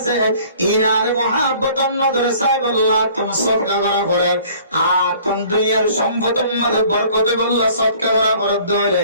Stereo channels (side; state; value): both; inverted; correlation -0.52